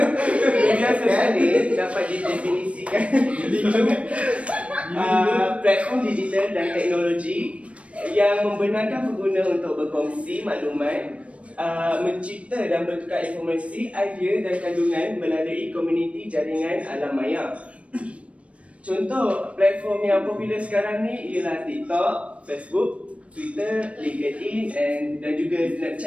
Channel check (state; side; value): late; left; 0.063 ms